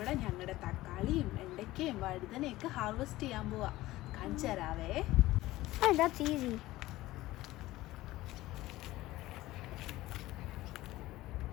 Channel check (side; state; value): right; quieter; 17.2 dB